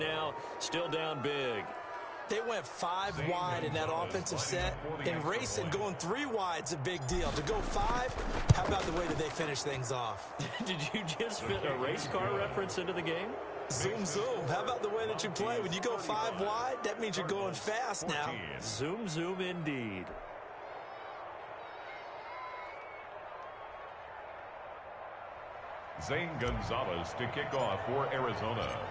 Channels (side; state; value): both; identical; correlation 1.00